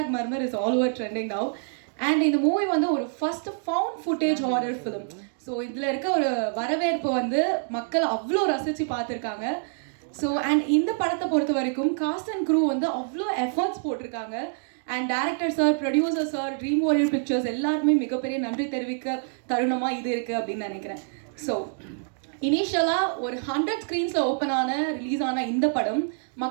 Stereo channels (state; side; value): silent; left; digital silence